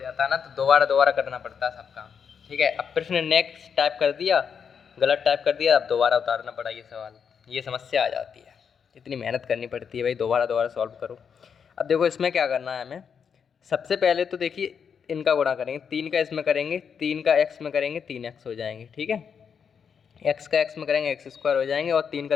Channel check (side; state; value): right; quieter; 6.9 dB